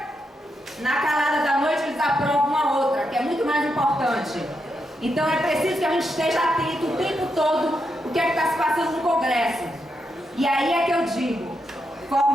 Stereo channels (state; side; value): normal; both; correlation 0.83